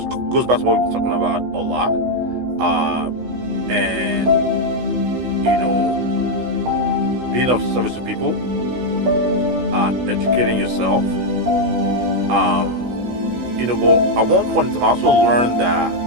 goes back to what we've been talking about a lot. And, being of service to people, educating yourself. But at one point in time, I also learned that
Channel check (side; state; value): left; late; 16 ms